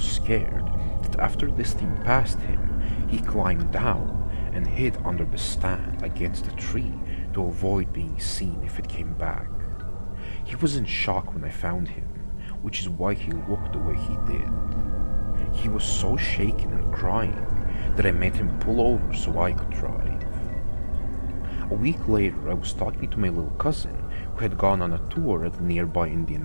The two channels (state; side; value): inverted; both; correlation -1.00